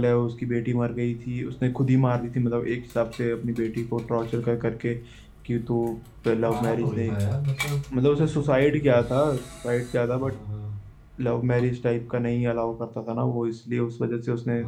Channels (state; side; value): identical; both; correlation 1.00